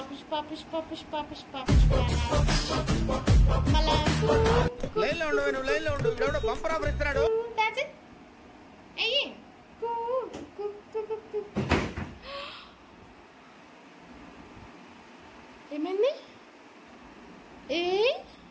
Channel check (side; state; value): both; identical; correlation 1.00